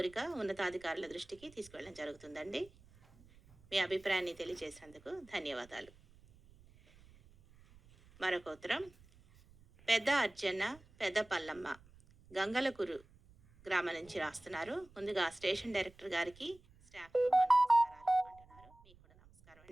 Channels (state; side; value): noise; right; rumble, 26 dB below the sound